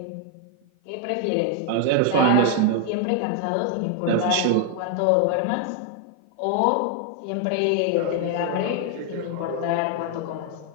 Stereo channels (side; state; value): both; different; correlation 0.00